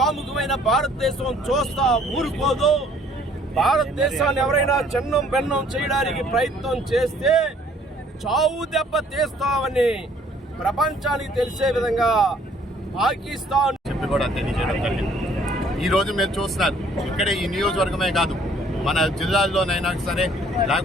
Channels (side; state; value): both; normal; correlation 0.59